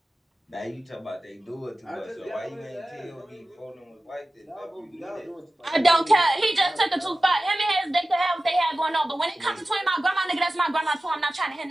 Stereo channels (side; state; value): both; normal; correlation 0.95